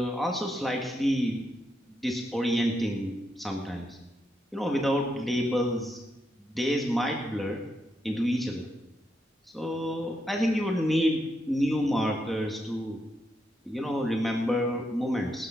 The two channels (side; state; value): both; normal; correlation 0.81